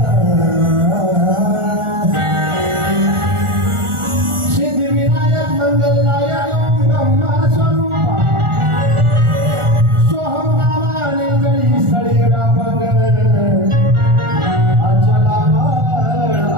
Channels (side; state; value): left; late; 1.4 ms